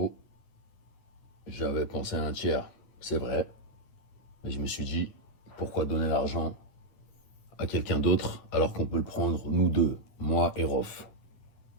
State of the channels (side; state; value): right; late; 9.6 ms